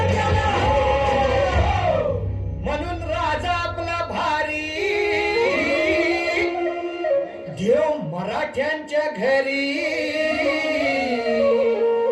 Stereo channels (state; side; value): identical; both; correlation 1.00